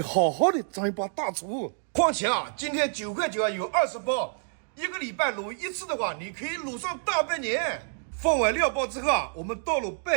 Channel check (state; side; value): silent; left; digital silence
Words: 好好的当一把大厨。况且啊，今天9块9啊有20包，一个礼拜卤一次的话，你可以卤上大半年。放完料包之后啊，我们倒入